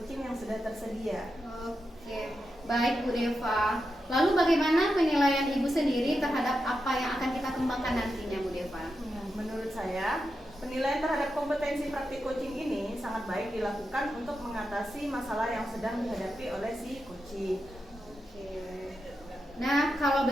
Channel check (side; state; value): both; normal; correlation 0.88